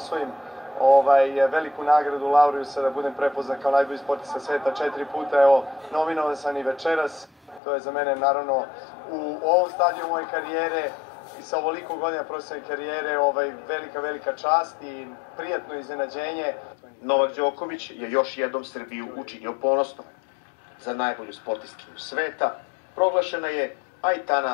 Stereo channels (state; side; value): drops out; right; at 7.6 s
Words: veliku nagradu Laureusa, da budem prepoznat kao najbolji sportista sveta 4 puta. Evo, nominovan sam i večeras. To je za mene, naravno, u ovom stadiju moje karijere i sa ovoliko godina profesionalne karijere velika čast i prijatno iznenađenje. Novak Đoković je još jednom Srbiju učinio ponosnom. Za najbolju sportistkinju sveta proglašena je